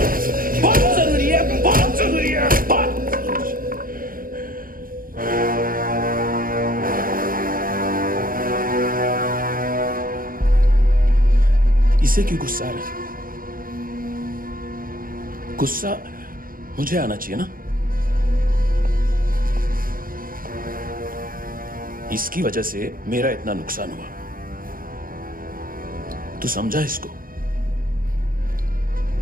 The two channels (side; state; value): left; late; 0.41 ms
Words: बहुत जरूरी है, बहुत जरूरी है, बहुत। इसे क्यों गुस्सा आ रहा है? गुस्सा मुझे आना चाहिए ना। इसकी वजह से मेरा इतना नुकसान हुआ। तू समझा इसको?